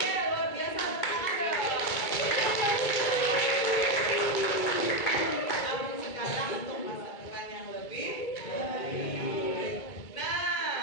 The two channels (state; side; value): late; right; 2.3 ms